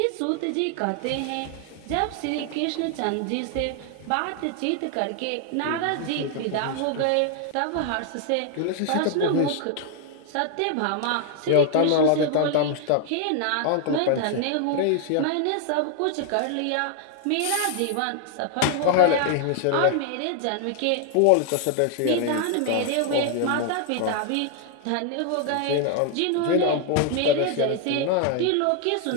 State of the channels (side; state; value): both; different; correlation 0.00